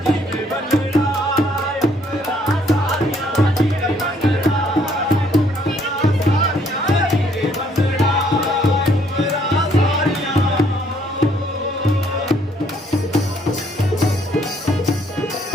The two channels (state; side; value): normal; both; correlation 0.66